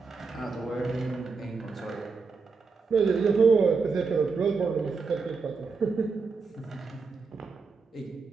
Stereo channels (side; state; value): left; quieter; 4.7 dB